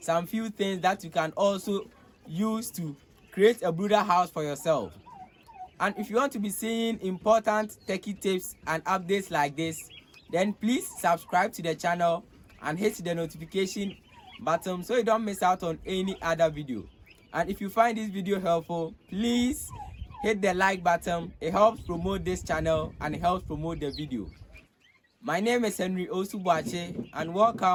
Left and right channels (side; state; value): both; identical; correlation 1.00